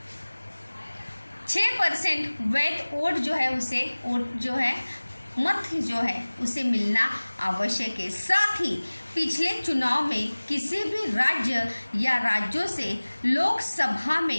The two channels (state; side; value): inverted; both; correlation -1.00